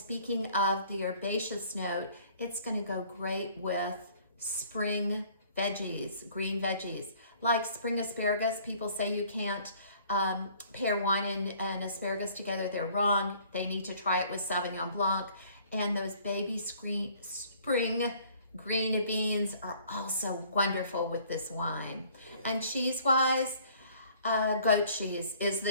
of the herbaceous note, it's gonna go great with spring veggies, green veggies. Like spring asparagus, people say you can't pair wine and asparagus together. They're wrong. They need to try it with Sauvignon Blanc. And those baby spring green beans are also wonderful with this wine. And cheese-wise, goat cheese is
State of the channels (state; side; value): inverted; both; correlation -0.56